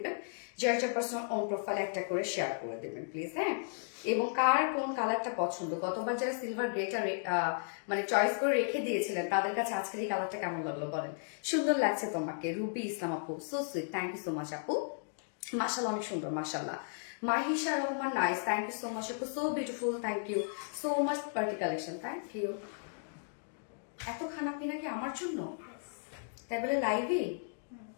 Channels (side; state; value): right; silent; digital silence